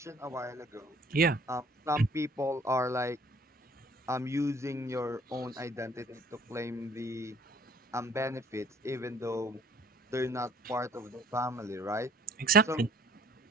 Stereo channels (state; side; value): normal; both; correlation 0.56